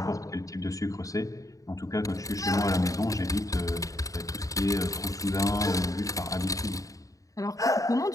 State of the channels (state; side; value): late; right; 0.16 ms